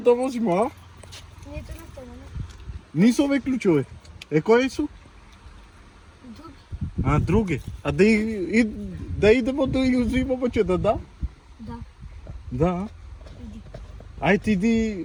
vozimo, a? Nije to nastavljeno. Nisu ove ključove. Koji su? Drugi. A, drugi. A da idemo da ih uzimamo će da da? Da. Da. Idi. Ajde idi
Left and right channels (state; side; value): identical; both; correlation 1.00